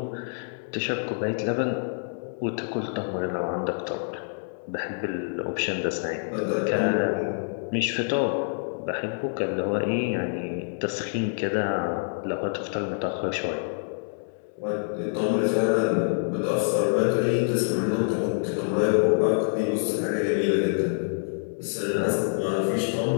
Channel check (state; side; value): silent; right; digital silence